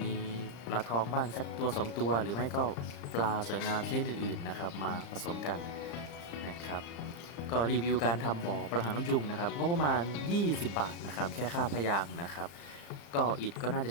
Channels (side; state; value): right; late; 35 ms